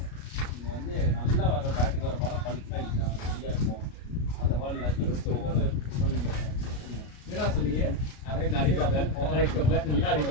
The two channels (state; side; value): late; right; 33 ms